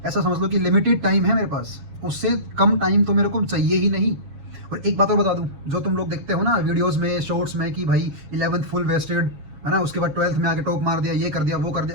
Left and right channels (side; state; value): left; late; 7.2 ms